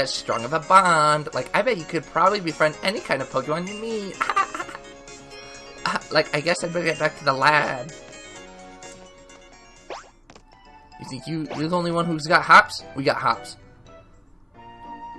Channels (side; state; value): both; identical; correlation 1.00